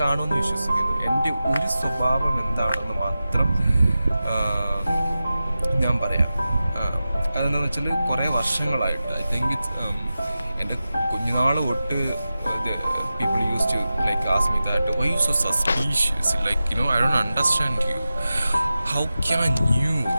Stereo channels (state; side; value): inverted; both; correlation -0.94